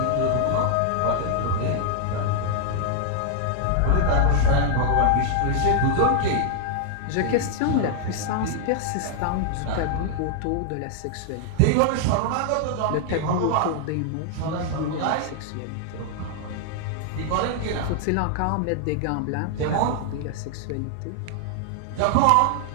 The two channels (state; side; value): different; both; correlation 0.00